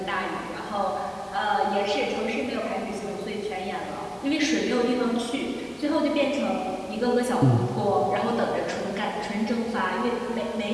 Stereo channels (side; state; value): both; identical; correlation 1.00